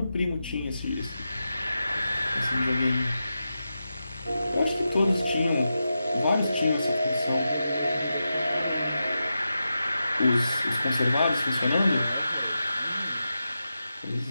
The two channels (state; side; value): inverted; both; correlation -0.90